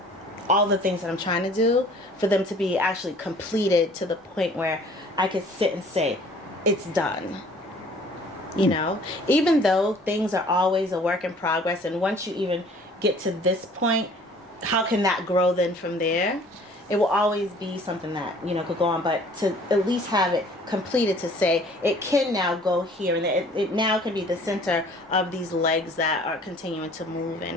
all the things that I'm trying to do, for them to be actually completed to the point where I could sit and say, it's done. Even though things are always a work in progress, and once you even get to this point, how can that grow then from there? It will always be something that, could go on, but to at least have it completed to say, it can now go here, and it now can be the center of these legs that are continuing to move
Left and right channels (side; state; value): both; normal; correlation 0.53